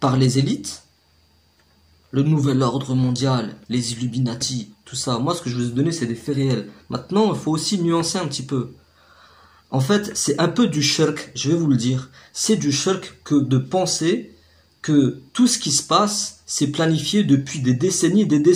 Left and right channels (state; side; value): identical; both; correlation 1.00